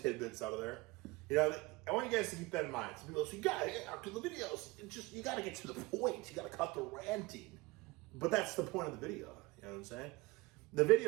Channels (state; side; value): quieter; left; 23.1 dB